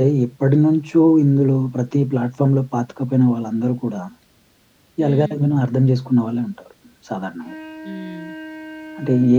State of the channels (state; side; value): identical; both; correlation 1.00